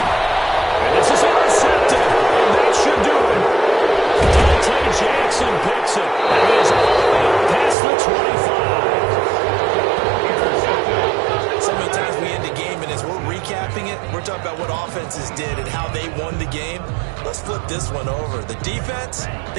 And this is intercepted. And that should do it. Dante Jackson picks it. And is all the way up past the 25. So many times we end a game, and as we're recapping it, we're talking about what offenses did and how they won the game. Let's flip this one over. The defense,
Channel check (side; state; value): left; drops out; at 7.8 s